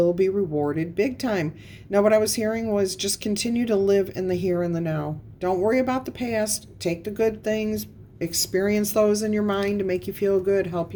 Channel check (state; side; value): identical; both; correlation 1.00